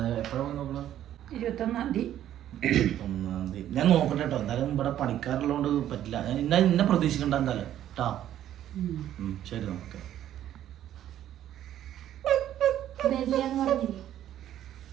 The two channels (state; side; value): quieter; left; 11.7 dB